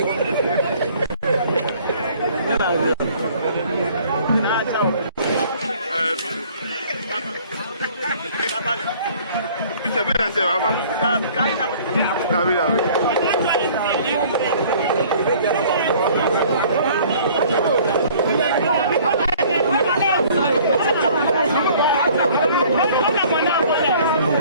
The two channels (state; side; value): inverted; both; correlation -0.53